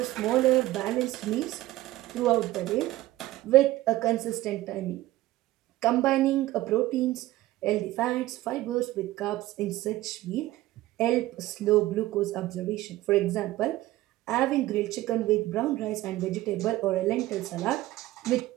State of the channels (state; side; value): quieter; left; 16.6 dB